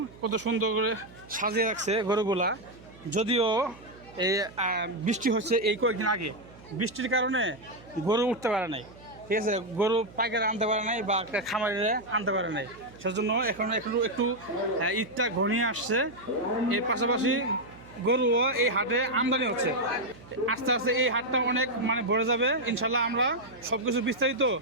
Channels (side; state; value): right; noise; hum, 21 dB below the sound